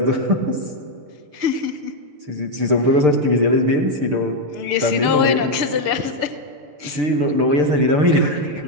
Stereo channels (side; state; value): left; late; 6.7 ms